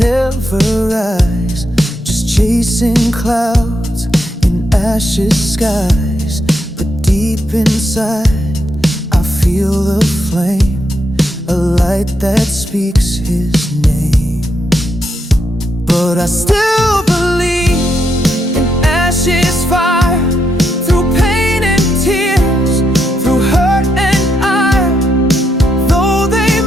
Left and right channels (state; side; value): normal; both; correlation 0.80